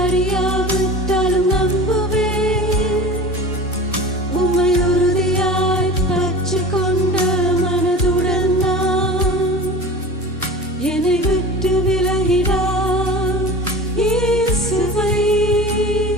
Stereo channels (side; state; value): both; normal; correlation 0.35